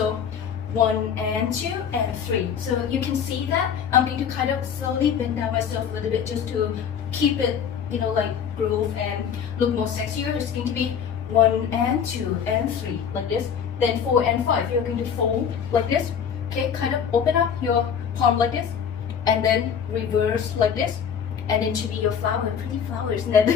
1 and 2 and 3. So you can see that I'm going to kind of slowly bend down myself a little bit just to keep it, like groove and look more sexier. It's going to be 1 and 2 and 3 like this. Then 4 and 5. You're going to fold like this. Okay, kind of open up your palm like this, and then reverse like this, and then should be your flower, pretty flowers, and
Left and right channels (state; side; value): quieter; right; 7.7 dB